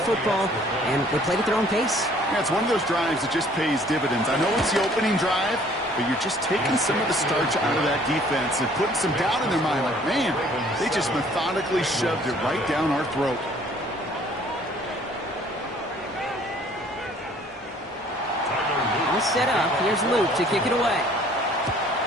and they played at their own pace. Yeah, it's one of those drives that just pays dividends. I know it's the opening drive, but you're just taking some of the starch out of that defense and putting some doubt in their mind. Like, man, they just methodically shoved it right down our throat. pass set up. Here's Luke to kick it away.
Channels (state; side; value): normal; both; correlation 0.57